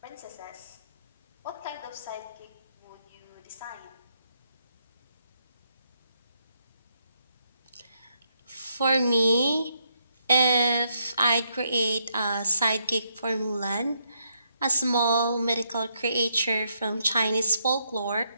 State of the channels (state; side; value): inverted; both; correlation -0.77